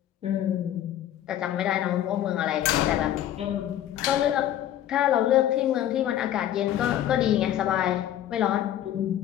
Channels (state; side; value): quieter; right; 11.8 dB